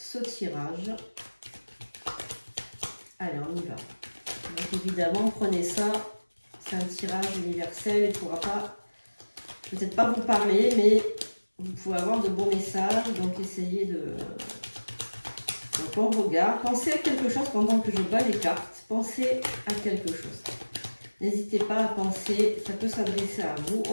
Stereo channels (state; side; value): inverted; both; correlation -1.00